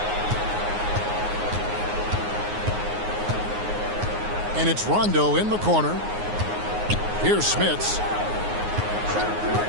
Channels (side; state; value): left; late; 9.6 ms